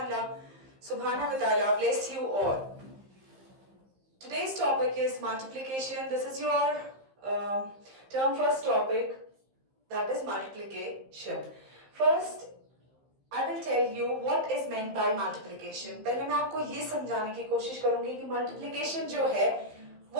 subhanahu wa ta'ala bless you all. Today's topic is multiplication. This is your term first topic, that is multiplication. First, I will tell you what is meant by multiplication. पहले मैं आपको ये समझाने की कोशिश करूंगी कि multiplication जो है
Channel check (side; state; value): left; late; 15 ms